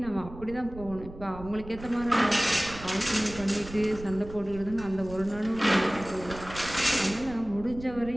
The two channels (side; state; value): right; noise; rumble, 15 dB below the sound